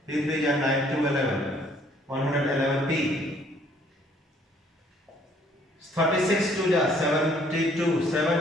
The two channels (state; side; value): normal; both; correlation 0.62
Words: 3 3 are 9 2 11. 111P. 36 2 ja 72,